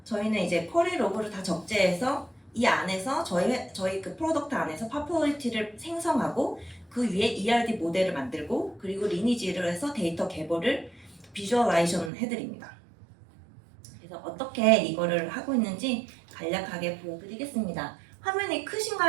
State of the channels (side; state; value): left; drops out; at 12.1 s